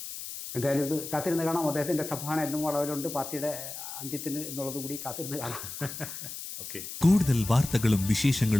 എന്തായാലും ഇത് കാത്തിരുന്ന് കാണാം. അദ്ദേഹത്തിൻ്റെ സംഭാഷണം എന്നും വളവിലുണ്ട് പാർട്ടിയുടെ അന്ത്യത്തിന് എന്നുള്ളത് കൂടി കാത്തിരുന്ന് കാണാം. കൂടുതൽ വാർത്തകളും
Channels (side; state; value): left; noise; hiss, 9 dB below the sound